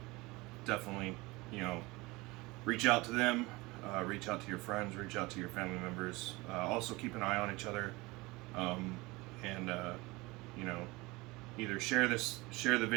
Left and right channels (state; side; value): quieter; left; 22.8 dB